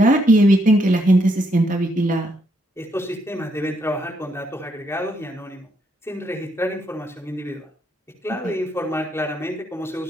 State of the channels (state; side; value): normal; both; correlation 0.75